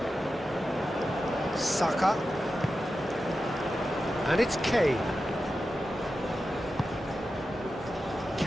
Saka. And it's Kane.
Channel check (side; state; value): both; normal; correlation 0.91